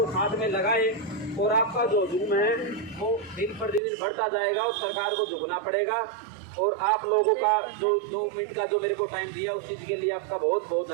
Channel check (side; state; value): left; drops out; at 3.8 s